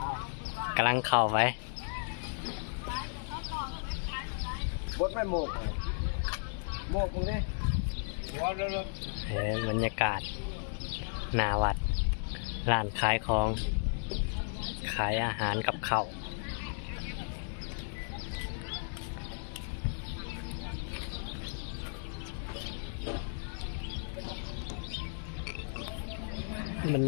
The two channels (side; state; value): right; silent; digital silence